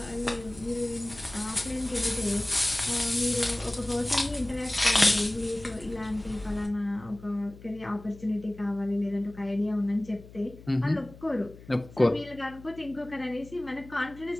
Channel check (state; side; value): noise; left; hum, 19 dB below the sound